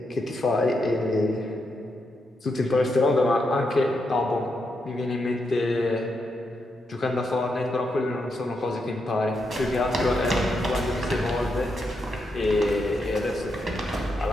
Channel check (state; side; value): normal; both; correlation 0.83